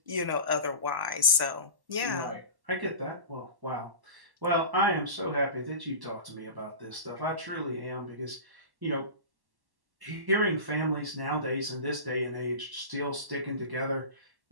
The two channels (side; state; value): left; late; 1.1 ms